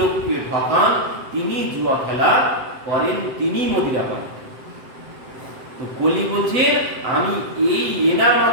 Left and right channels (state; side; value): late; left; 7.8 ms